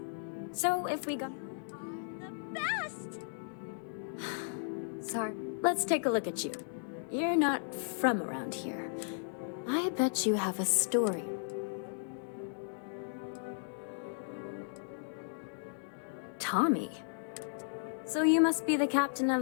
So if we go... The best! Sorry. Let's take a look at you. You're not from around here. I bet you have a story. Tommy. So you must be the captain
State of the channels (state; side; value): silent; right; digital silence